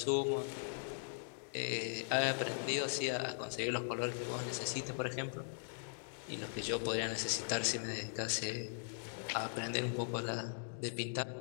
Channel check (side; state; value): right; silent; digital silence